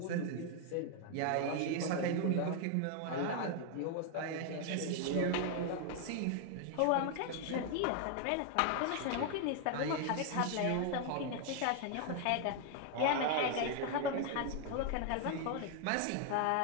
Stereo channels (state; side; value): different; both; correlation 0.00